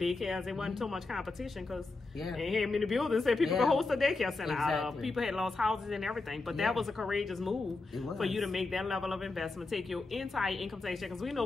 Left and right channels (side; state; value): right; quieter; 3.5 dB